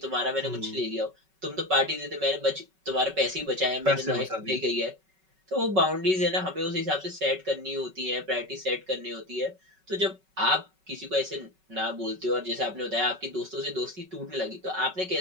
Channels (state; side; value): late; left; 5.3 ms